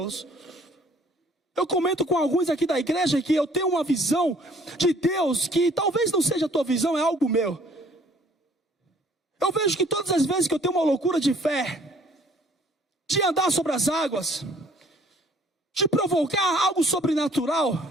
Eu comento com alguns aqui da igreja que eu tenho uma visão de Deus que talvez não seja a tua visão, é algo meu. Eu vejo que todas as vezes que eu tenho uma loucura de fé, de andar sobre as águas, de provocar algo sobrenatural,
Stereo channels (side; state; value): both; normal; correlation 0.57